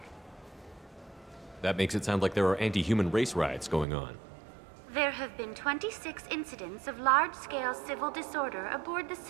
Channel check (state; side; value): drops out; left; at 3.9 s